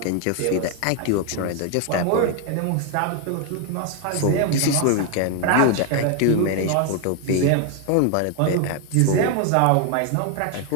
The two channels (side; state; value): both; different; correlation 0.00